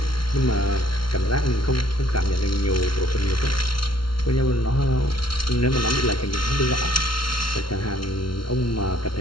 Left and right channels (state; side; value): late; right; 0.73 ms